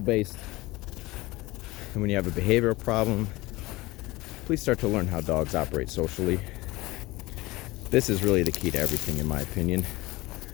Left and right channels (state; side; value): quieter; right; 20.5 dB